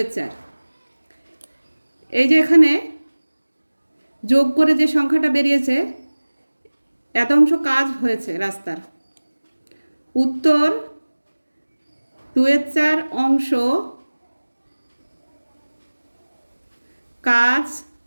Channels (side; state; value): both; inverted; correlation -1.00